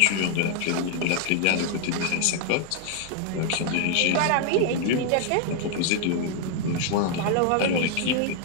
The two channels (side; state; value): both; different; correlation 0.00